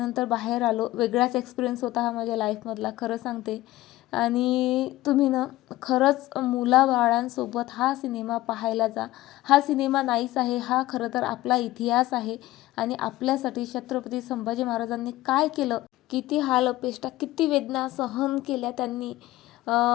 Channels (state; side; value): quieter; right; 16.8 dB